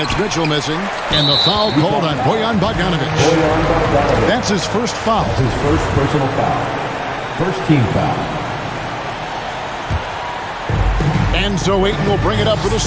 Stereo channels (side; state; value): both; identical; correlation 1.00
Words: Mitchell missing. And the foul called on Bojan Bogdanovich. That's his first foul. That's his first personal foul. First team foul. And so Ayton will bring it up for the